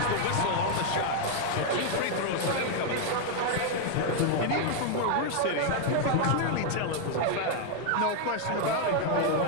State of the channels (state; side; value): different; both; correlation 0.00